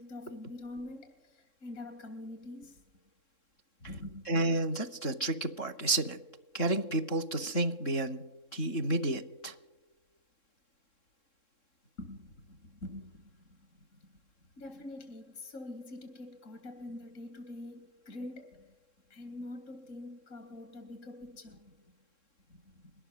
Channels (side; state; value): right; late; 3.7 ms